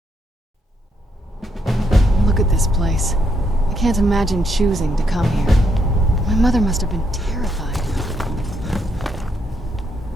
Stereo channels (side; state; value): both; normal; correlation 0.76